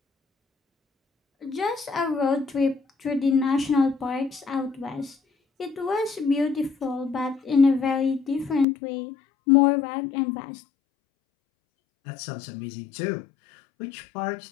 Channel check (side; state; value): right; drops out; at 8.7 s